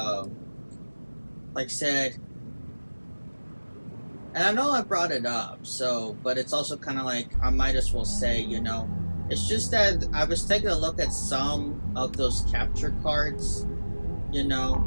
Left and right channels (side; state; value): both; inverted; correlation -1.00